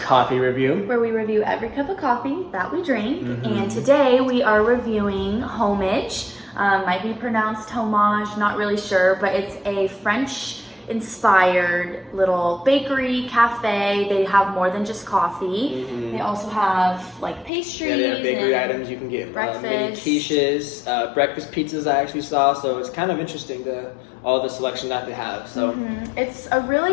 review. Where we review every cup of coffee that we drink. And today we are reviewing Höma'ge. Might be pronounced Höma'ge, not really sure, but it's a French inspired little bakery, cafe. They have more than just coffee. They also have like pastries. Yeah, they have bakery items. You can get mini quiches, breakfast pizzas I actually saw, so it's kind of interesting all the selection that they have. So it's a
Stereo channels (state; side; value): drops out; right; at 17.5 s